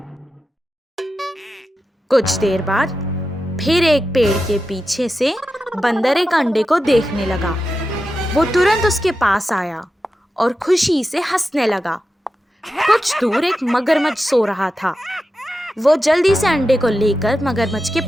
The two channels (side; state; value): both; normal; correlation 0.90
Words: कुछ देर बाद फिर एक पेड़ के पीछे से बंदर एक अंडे को देखने लगा। वो तुरंत उसके पास आया और खुशी से हंसने लगा। कुछ दूर एक मगरमच्छ सो रहा था। वो जल्दी से अंडे को लेकर मगरमच्छ के